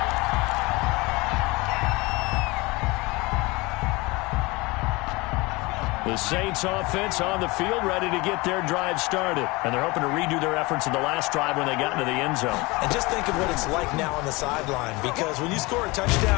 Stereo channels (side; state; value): right; quieter; 23.9 dB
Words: The Saints offense on the field, ready to get their drive started. And they're hoping to redo their efforts in the last drive when they got into the end zone. And just think of what it's like now on the sideline, because when you score a